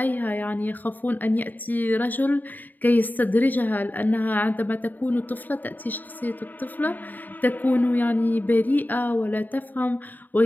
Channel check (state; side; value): late; right; 0.086 ms